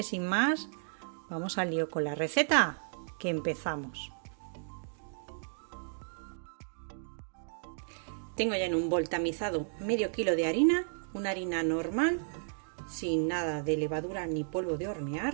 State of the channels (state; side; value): silent; left; digital silence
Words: sin más, vamos al lío con la receta, que empezamos. Tengo ya en un bol tamizado medio kilo de harina, una harina normal, sin nada de levadura ni polvo de